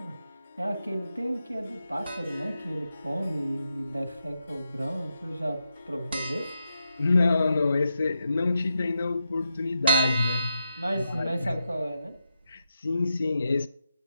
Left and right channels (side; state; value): both; inverted; correlation -0.86